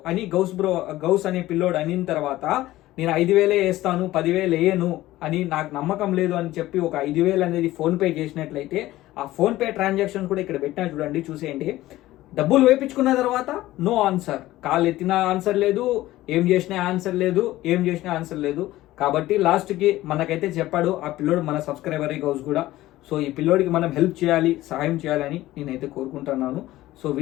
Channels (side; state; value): right; quieter; 16.2 dB